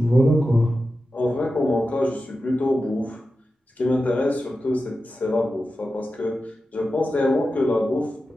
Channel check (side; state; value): both; normal; correlation 0.92